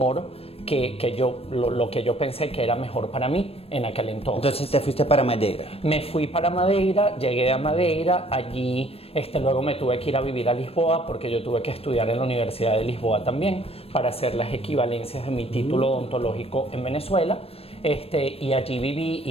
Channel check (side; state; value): right; late; 0.28 ms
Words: lo que yo pensé que era mejor para mí en aquel entonces. Entonces te fuiste para Madeira. Me fui para Madeira, llegué a Madeira, allí luego me tuve que ir a vivir a Lisboa porque yo tuve que estudiar en la Universidad de Lisboa también para hacer las equivalencias de mi título odontológico en Venezuela. Y allí viví,